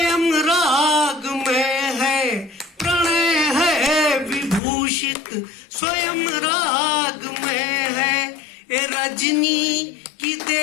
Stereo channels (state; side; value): drops out; right; at 4.6 s